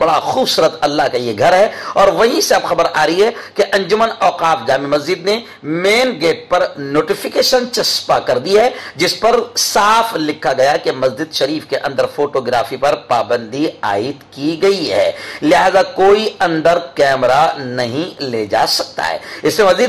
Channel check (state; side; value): identical; both; correlation 1.00